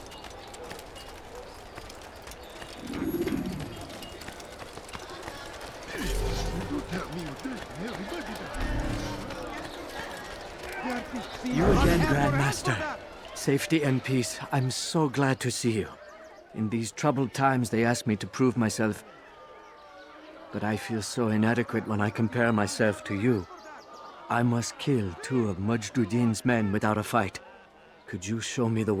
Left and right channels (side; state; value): both; identical; correlation 1.00